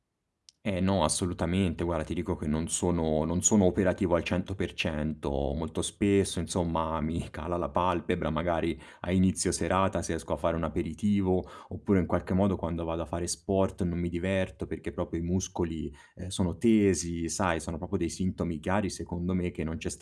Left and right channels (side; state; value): both; identical; correlation 1.00